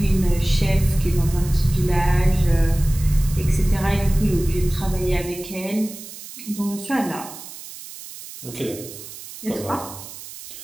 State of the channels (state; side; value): noise; right; hiss, 14 dB below the sound